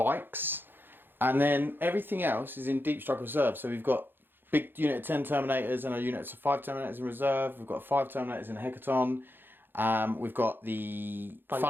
And then everything else is in Deep Strike Reserve. So we've got big unit of 10 Terminators and a unit of 5 Terminators in reserve. We've got 5 Terminators in Hecaton. We've got the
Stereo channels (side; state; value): left; late; 0.099 ms